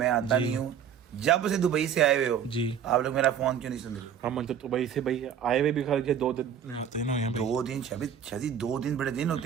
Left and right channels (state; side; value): quieter; left; 8.5 dB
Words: आता नहीं हूँ। जब से दुबई से आए हुए हो जी, आप लोग मेरा फोन क्यों नहीं सुन रहे? हम मतलब दुबई से भाई आए हुए भी खाली 2 दिन हुए हैं भाई। 2 दिन शादी 2 दिन बड़े दिन